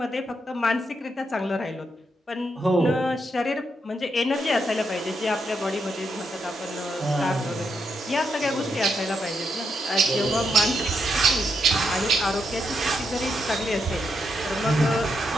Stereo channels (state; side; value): normal; both; correlation 0.81